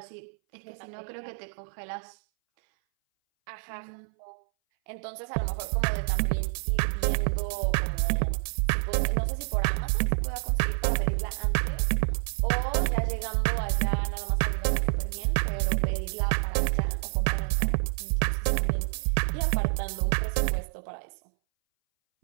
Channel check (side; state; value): left; silent; 59 dB below the other